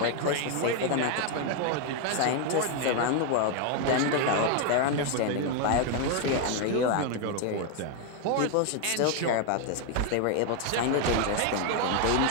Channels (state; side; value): different; both; correlation 0.01